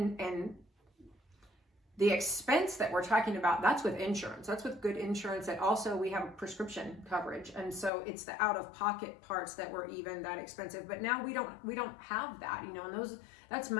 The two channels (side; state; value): right; drops out; at 7.9 s